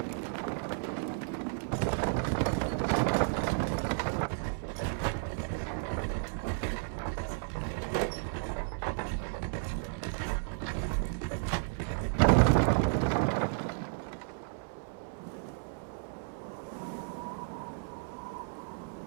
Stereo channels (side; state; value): left; silent; 56 dB below the other